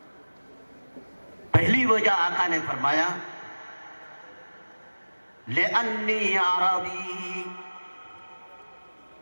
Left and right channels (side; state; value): both; inverted; correlation -1.00